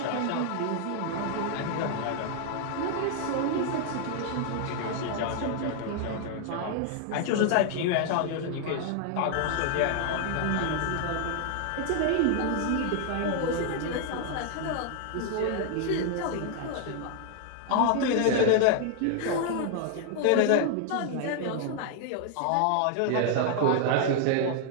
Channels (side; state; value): both; different; correlation 0.00